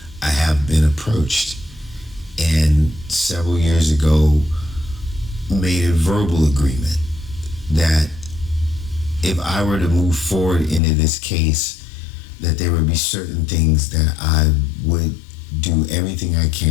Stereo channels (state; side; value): drops out; right; at 10.8 s